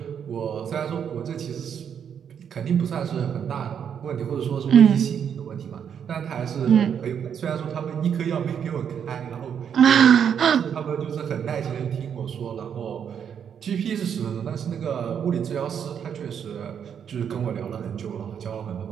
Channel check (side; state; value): left; quieter; 8.0 dB